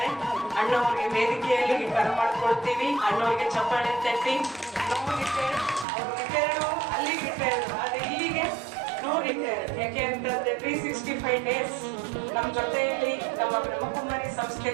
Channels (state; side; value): drops out; left; at 5.9 s